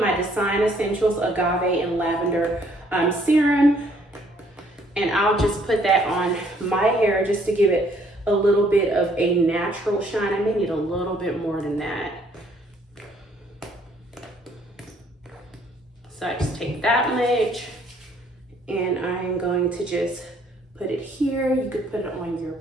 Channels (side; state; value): both; normal; correlation 0.64